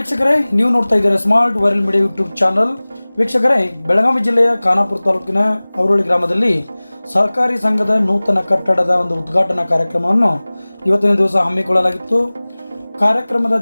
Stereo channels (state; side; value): inverted; both; correlation -1.00